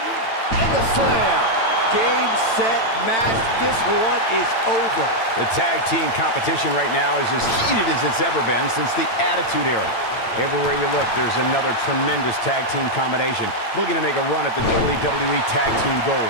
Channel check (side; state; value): right; late; 8.9 ms